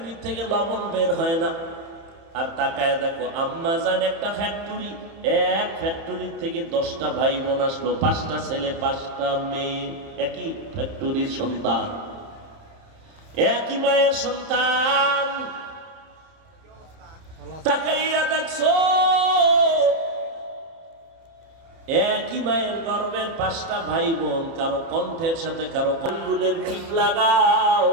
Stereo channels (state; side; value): late; left; 30 ms